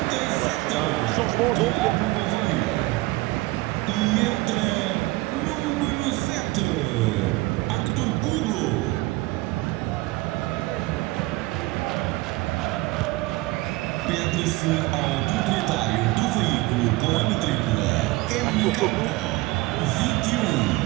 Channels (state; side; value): quieter; left; 20.7 dB